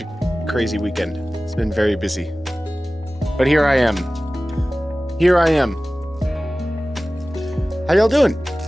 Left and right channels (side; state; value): both; normal; correlation 0.97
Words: a crazy weekend. It's been very busy. But here I am. Here I am. How y'all doing?